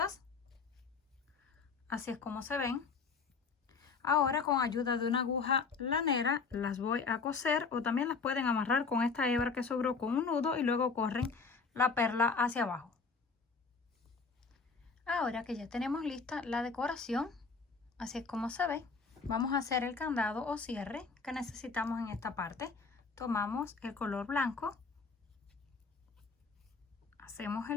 Así es como se ven. Ahora con ayuda de una aguja lanera las voy a coser o también las pueden amarrar con esta hebra que sobró con un nudo y luego corren la perla hacia abajo. Ahora que ya tenemos lista la decoración, así es como se ve, vamos a hacer el candado o cierre que necesitamos en esta parte. Tomamos el color blanco, Hacemos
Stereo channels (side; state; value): right; quieter; 4.8 dB